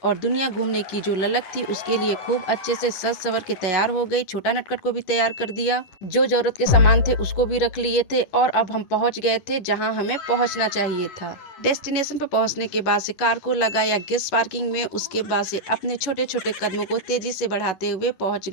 और दुनिया घूमने की जो ललक थी उसके लिए खूब अच्छे से सज सवर के तैयार हो गई। छोटा नटखट को भी तैयार कर दिया, जो जरूरत के सामान थे उसको भी रख लिए थे और अब हम पहुंच गए थे जहां हमें पहुंचना चाहिए था। डेस्टिनेशन पर पहुंचने के बाद से कार को लगाया गेस्ट पार्किंग में। उसके बाद से अपने छोटे छोटे कदमों को तेजी से बढ़ाते हुए पहुंच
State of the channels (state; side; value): late; right; 10 ms